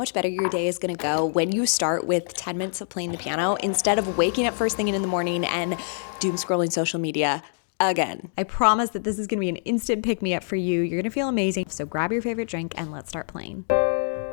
better your day is gonna go when you start with 10 minutes of playing the piano instead of waking up first thing in the morning and doom scrolling social media again. I promise that this is gonna be an instant pick-me-up for you. You're gonna feel amazing. So grab your favorite drink and let's start playing.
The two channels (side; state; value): right; silent; digital silence